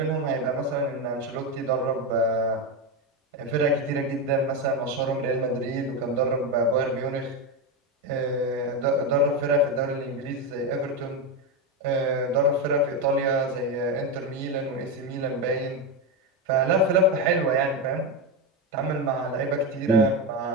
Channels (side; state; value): both; normal; correlation 0.12